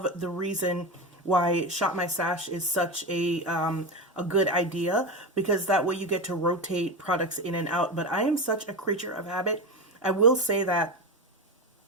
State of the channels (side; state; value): both; normal; correlation 0.20